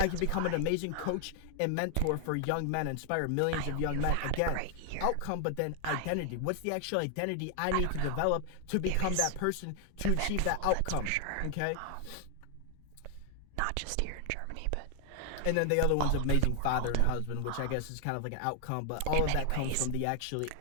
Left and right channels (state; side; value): different; both; correlation 0.00